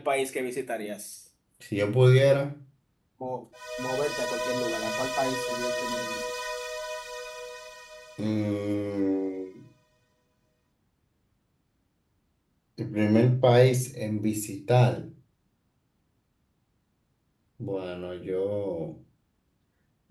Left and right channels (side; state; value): both; identical; correlation 1.00